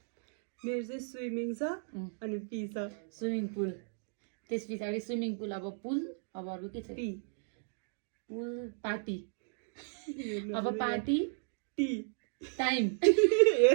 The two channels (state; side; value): silent; left; digital silence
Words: मेरो चाहिँ स्विमिङ छ अनि पी छ। Swimming pool. त्यस पछाडि स्विमिङ पुल। अब पुल। अब अरू के छ? पी। पुल पार्टी। अब पार्टी टी। टाइम।